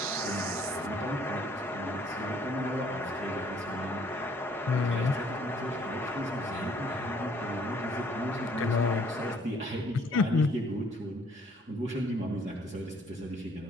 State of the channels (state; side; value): normal; both; correlation 0.61